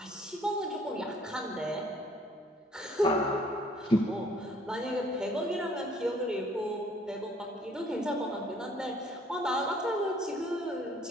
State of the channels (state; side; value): normal; both; correlation 0.59